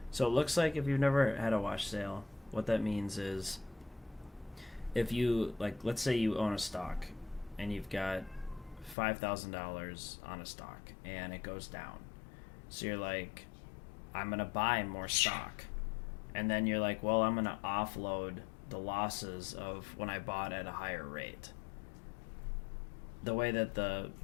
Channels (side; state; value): right; drops out; at 9.0 s